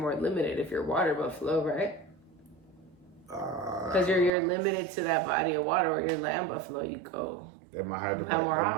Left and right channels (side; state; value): left; drops out; at 4.3 s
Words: limited if you're water buffalo, right? Because you're limited to that body of water. Or you're land buffalo, you go. They might have to